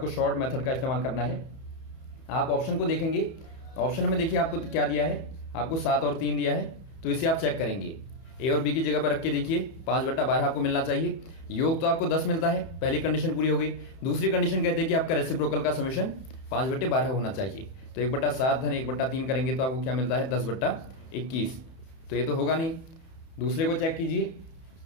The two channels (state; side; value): late; right; 31 ms